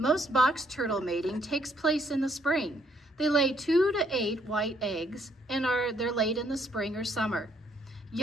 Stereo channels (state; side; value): normal; both; correlation 0.69